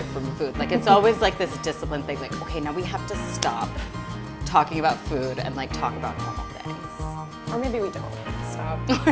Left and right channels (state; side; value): identical; both; correlation 1.00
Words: from food. Like it's always like this discipline thing, like, okay, now we have to stop talking about food and like talk about normal things. Or maybe we don't. Stop. Or